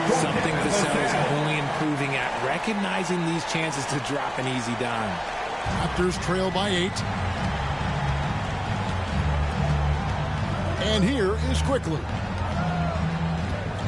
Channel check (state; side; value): identical; both; correlation 1.00